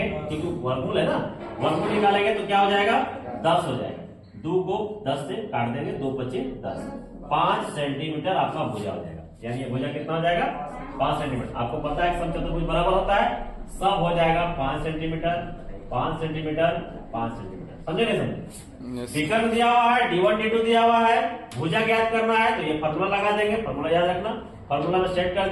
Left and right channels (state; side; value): identical; both; correlation 1.00